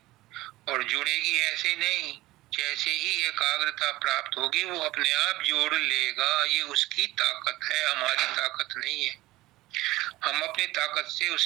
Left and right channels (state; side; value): quieter; left; 17.9 dB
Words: और जुड़ेगी ऐसे नहीं, जैसे ही एकाग्रता प्राप्त होगी वो अपने आप जोड़ लेगा। ये उसकी ताकत है, हमारी ताकत नहीं है। हम अपनी ताकत से